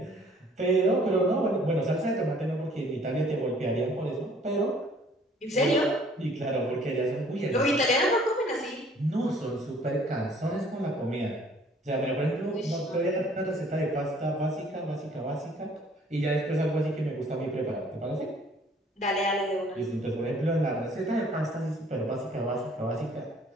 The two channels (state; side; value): normal; both; correlation 0.57